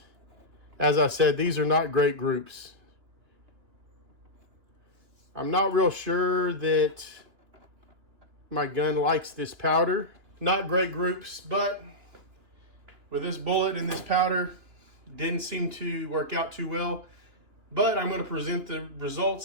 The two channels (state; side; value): late; left; 2.9 ms